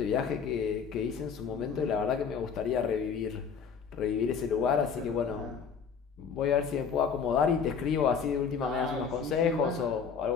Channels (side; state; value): right; quieter; 6.3 dB